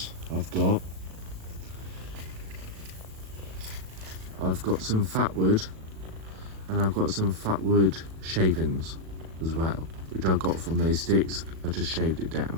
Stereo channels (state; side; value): late; left; 37 ms